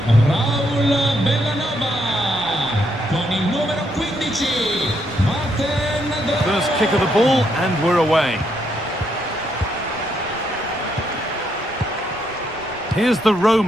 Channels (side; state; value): right; noise; rumble, 21 dB below the sound